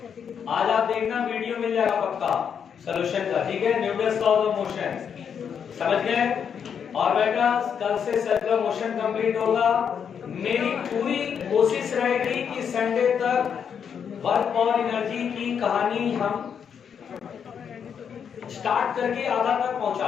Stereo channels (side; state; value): right; quieter; 7.5 dB